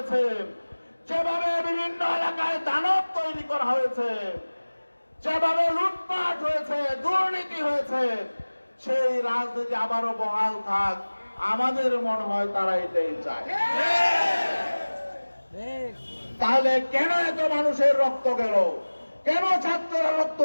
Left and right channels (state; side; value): inverted; both; correlation -1.00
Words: যেভাবে বিভিন্ন এলাকায় দানব তৈরি করা হয়েছে, যেভাবে লুটপাট হয়েছে, দুর্নীতি হয়েছে, সেই রাজনীতি আবারও বহাল থাক। আমাদের মনে হয় তারা এটাই চায়। তাহলে কেন এত মানুষের রক্ত গেল? কেন ছাত্ররা রক্ত